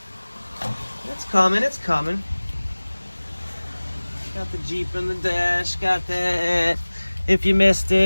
It's coming, it's coming. Got the Jeep in the dash, got that. If you missed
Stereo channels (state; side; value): inverted; both; correlation -1.00